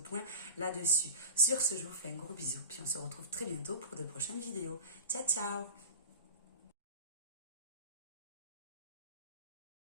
là-dessus. Sur ce, je vous fais un gros bisou. Puis on se retrouve très bientôt pour de prochaines vidéos. Ciao, ciao!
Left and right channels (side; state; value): both; inverted; correlation -0.33